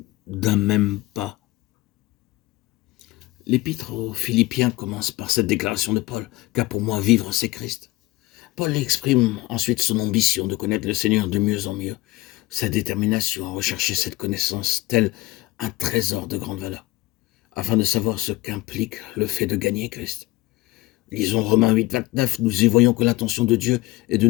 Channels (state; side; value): quieter; right; 19.1 dB